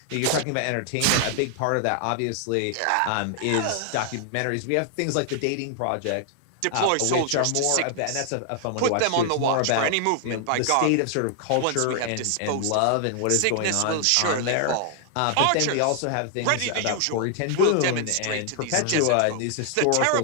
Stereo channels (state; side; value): different; both; correlation 0.00